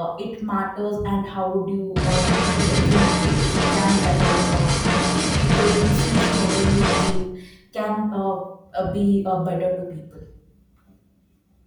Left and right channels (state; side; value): identical; both; correlation 1.00